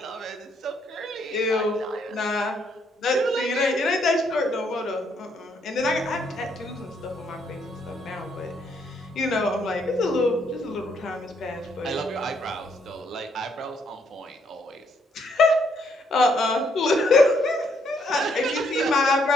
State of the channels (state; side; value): normal; both; correlation 0.71